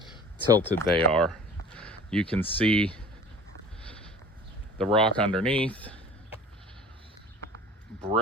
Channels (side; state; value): both; normal; correlation 0.43